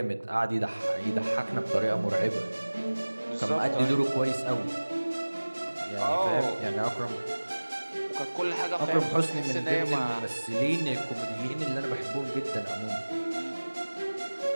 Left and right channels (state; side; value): inverted; both; correlation -1.00